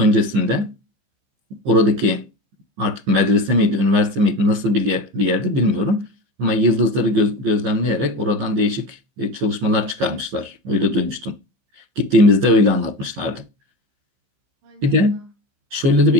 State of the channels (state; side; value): late; left; 15 ms